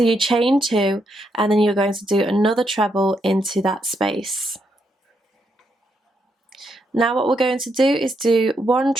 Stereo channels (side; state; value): both; normal; correlation 0.79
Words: you chain 2 and then you're going to do another treble into that space. Now what we're going to do is do 1